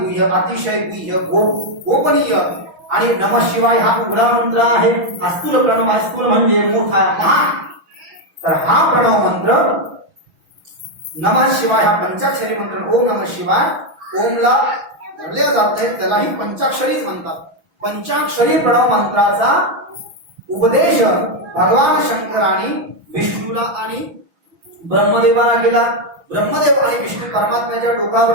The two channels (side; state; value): left; late; 6.1 ms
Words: अतिशय गुह्य, गोपनीय. आणि नमः शिवाय हा उघडा मंत्र आहे, हा स्थूल प्रणव आहे. स्थूल म्हणजे मोठा, महान. तर हा प्रणव मंत्र नमः शिवाय हा पंचाक्षरी मंत्र. ओम नमः शिवाय, ओमला धरल्या जात नाही, त्यालाही पंचाक्षरीच म्हणतात. पंचाक्षरी प्रणव मंत्राचा उपदेश भगवान शंकराने विष्णूला आणि ब्रह्मदेवाला केला. ब्रह्मदेव आणि विष्णू परमात्म्याच्या